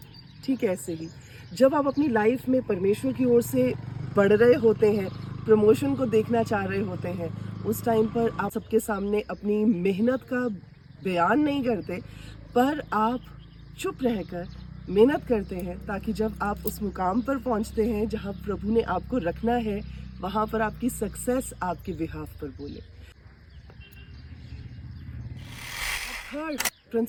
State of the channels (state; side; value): identical; both; correlation 1.00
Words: ठीक है, ऐसे ही जब आप अपनी लाइफ में परमेश्वर की ओर से बढ़ रहे होते हैं, प्रमोशन को देखना चाह रहे होते हैं, उस टाइम पर आप सबके सामने अपनी मेहनत का बयान नहीं करते, पर आप चुप रहकर मेहनत करते हैं ताकि जब आप उस मुकाम पर पहुंचते हैं जहां प्रभु ने आपको रखना है, वहां पर आपकी सक्सेस आपके बिहाफ पर बोले। थर्ड